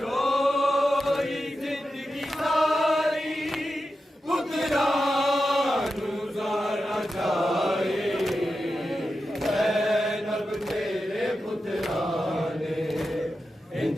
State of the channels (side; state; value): both; normal; correlation 0.90